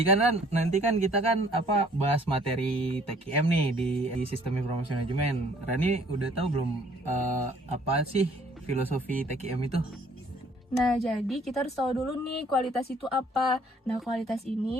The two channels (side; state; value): both; normal; correlation 0.59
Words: kan nanti kan kita kan bahas materi TKM nih di Sistem Informasi Manajemen. Rani udah tahu belum apa sih filosofi TKM itu? Nah, jadi kita harus tahu dulu nih kualitas itu apa. Nah, kualitas